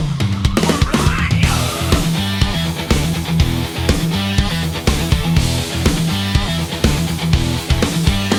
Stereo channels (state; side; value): identical; both; correlation 1.00